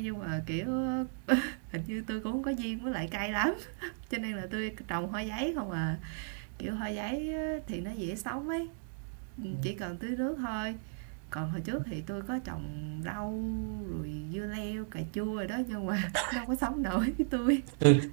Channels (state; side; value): silent; left; digital silence